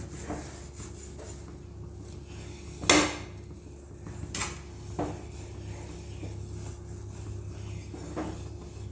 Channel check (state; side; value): identical; both; correlation 1.00